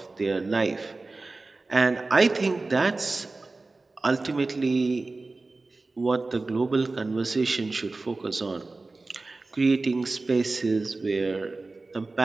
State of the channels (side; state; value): left; quieter; 3.4 dB